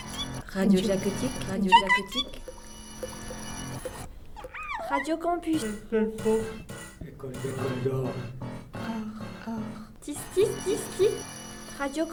Radio Jacotique, Radio Jacotique. Radio Campus. École d'or. Tis. Radio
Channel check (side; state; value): both; identical; correlation 1.00